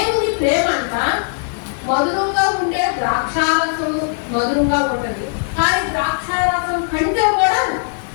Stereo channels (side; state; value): right; silent; digital silence